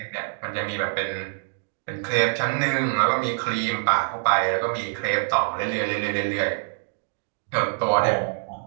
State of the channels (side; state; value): left; silent; digital silence